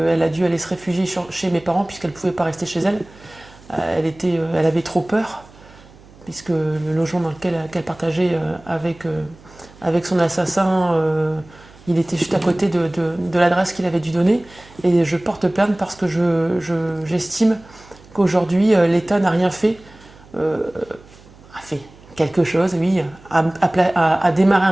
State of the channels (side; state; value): right; noise; hum, 24 dB below the sound